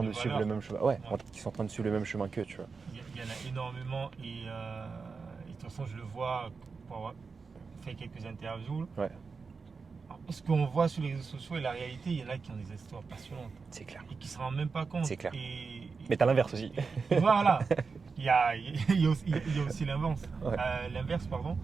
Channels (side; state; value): left; quieter; 4.8 dB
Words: de suivre le même chemin. Ouais, qui sont en train de suivre le même chemin qu'eux, tu vois. Il y en a énormément et de toute façon, je le vois pour avoir fait quelques interviews. Ouais. Ce qu'on voit sur les réseaux sociaux et la réalité, il y en a qui ont des histoires passionnantes. C'est clair. Et qui ne se rendent même pas compte. C'est clair. Mais t'as l'inverse aussi. Et voilà. Il y a aussi l'inverse. Ouais. L'inverse, pardon.